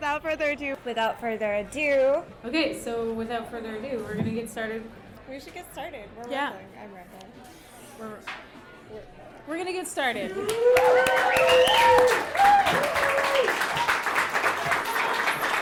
further ado. Okay, so without further ado, we're going to get started. We should get started. We're Yeah. rambling. I'm rambling. We're going to get started.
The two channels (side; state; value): both; identical; correlation 1.00